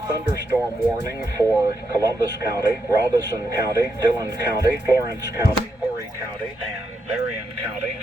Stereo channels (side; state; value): both; normal; correlation 0.82